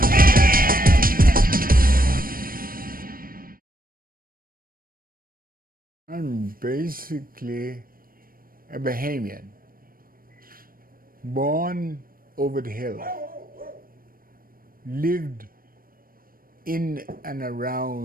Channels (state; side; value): late; left; 0.42 ms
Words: I'm basically a Bahamian, born over the hill, lived in and